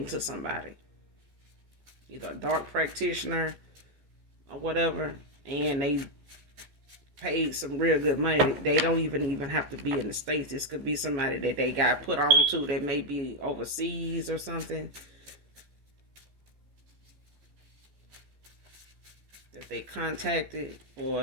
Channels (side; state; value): left; late; 15 ms